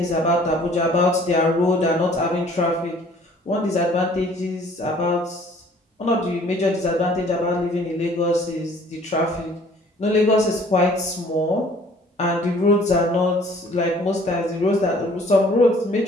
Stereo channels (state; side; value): normal; both; correlation 0.55